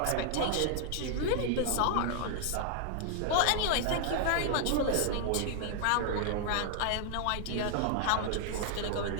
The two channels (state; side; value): different; both; correlation 0.00